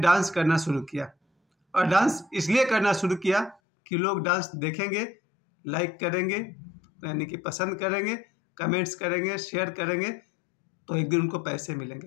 करना शुरू किया। और डांस इसलिए करना शुरू किया कि लोग डांस देखेंगे, लाइक करेंगे, यानी कि पसंद करेंगे, कमेंट्स करेंगे, शेयर करेंगे, तो एक दिन उनको पैसे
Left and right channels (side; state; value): right; drops out; at 3.6 s